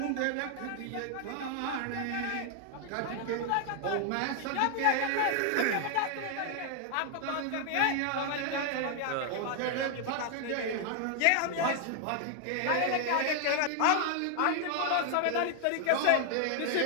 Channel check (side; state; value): both; different; correlation 0.00